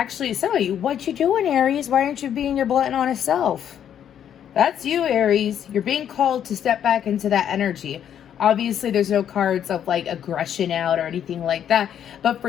some of you, what you doing, Aries? Why aren't you being your blunt and honest self? That's you, Aries. You're being called to step back into that energy. Obviously, there's no cards of like aggression out or anything like that. But for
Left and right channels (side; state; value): right; quieter; 9.5 dB